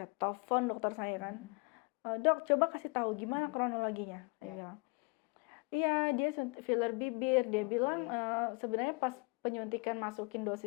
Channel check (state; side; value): quieter; right; 31.1 dB